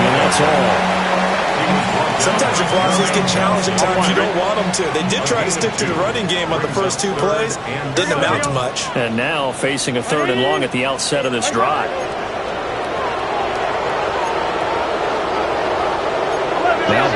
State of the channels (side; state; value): both; identical; correlation 1.00